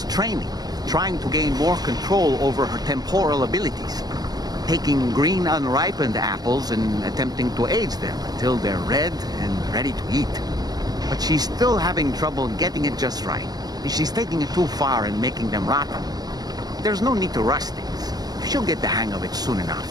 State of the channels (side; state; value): left; late; 0.19 ms